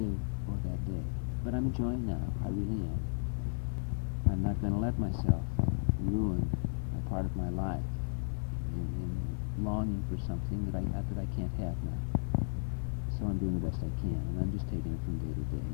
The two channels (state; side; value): silent; right; 55 dB below the other